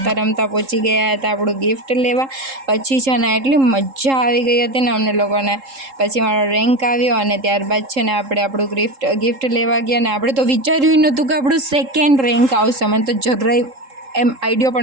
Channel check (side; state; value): left; late; 3.7 ms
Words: રમતા પહોંચી ગયા હતા આપણું ગિફ્ટ લેવા. પછી છે ને એટલી મજા આવી ગઈ હતી ને અમને લોકોને. પછી મારો રેન્ક આવ્યો અને ત્યારબાદ છે ને આપણે આપણું ગિફ્ટ લેવા ગયા ને આપણે તો વિચાર્યું નહોતું કે આપણું સેકન્ડ રેન્ક આવશે. મને તો જરાય એમ આઈડિયો